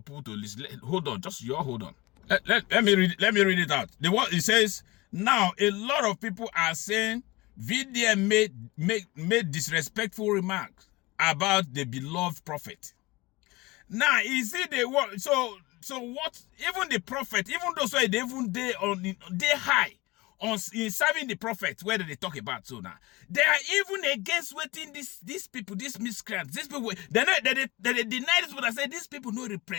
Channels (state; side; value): quieter; right; 21.9 dB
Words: people to listen. Hold on, hold on. Let me read it out. It says, now a lot of people are saying VDM made disrespectful remarks about the beloved prophet. Now, is it the what? So what? Even the prophet, even those who they high on in serving the prophet, where do they talk about so now? They are even against waiting these people, these miscreants, these people. They deny this, but I say these people don't